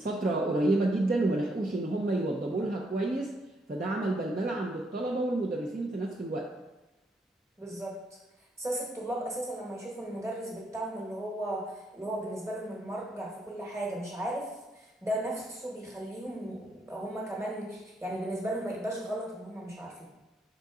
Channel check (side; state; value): both; normal; correlation 0.75